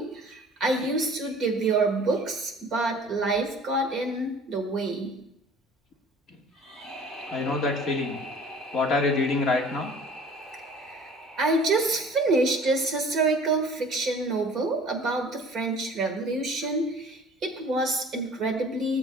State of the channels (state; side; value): normal; both; correlation 0.48